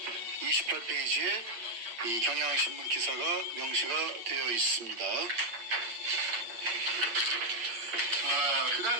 28페이지에 이 경향신문 기사가 명시가 되어 있습니다. 그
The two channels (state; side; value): late; left; 8.7 ms